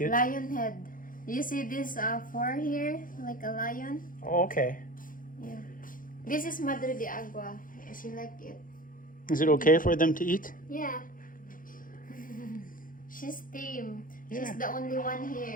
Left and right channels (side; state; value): right; late; 0.40 ms